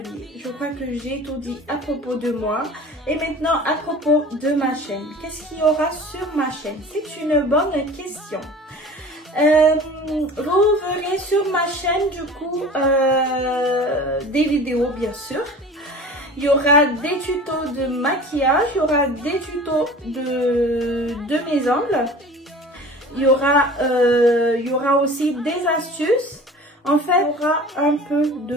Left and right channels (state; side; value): normal; both; correlation 0.41